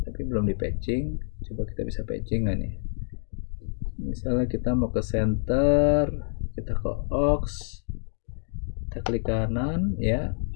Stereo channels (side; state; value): right; silent; digital silence